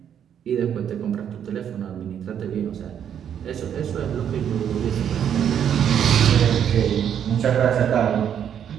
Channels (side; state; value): left; quieter; 9.0 dB